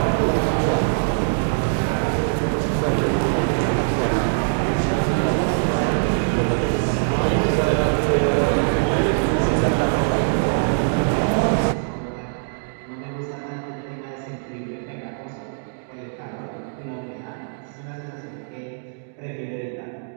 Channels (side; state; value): left; silent; digital silence